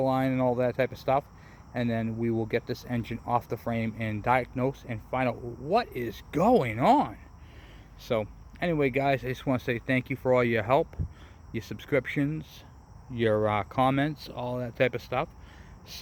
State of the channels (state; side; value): identical; both; correlation 1.00